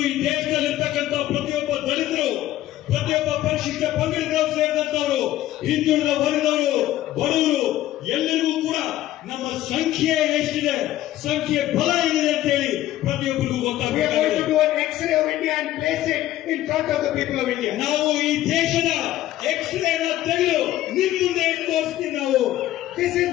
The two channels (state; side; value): quieter; right; 14.2 dB